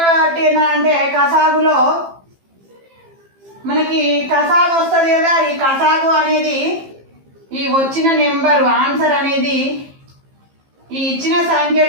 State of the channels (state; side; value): late; left; 15 ms